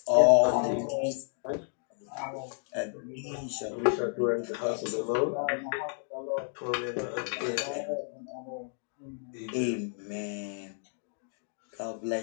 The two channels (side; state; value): right; silent; 57 dB below the other